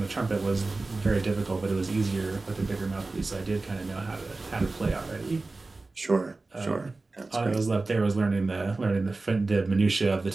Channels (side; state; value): left; quieter; 3.4 dB